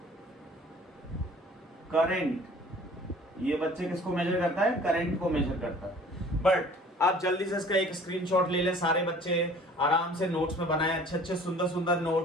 current. ये बच्चे किसको मेजर करता है? करंट को मेजर करता है। बट आप जल्दी से इसका एक स्क्रीनशॉट ले लें, सारे बच्चे आराम से नोट्स में बनाएं, अच्छे अच्छे सुंदर सुंदर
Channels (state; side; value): normal; both; correlation 0.50